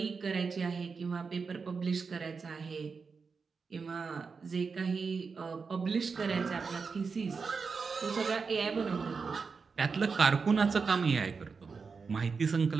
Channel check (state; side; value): quieter; left; 5.1 dB